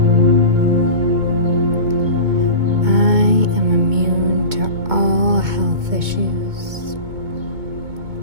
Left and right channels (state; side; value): late; left; 2.2 ms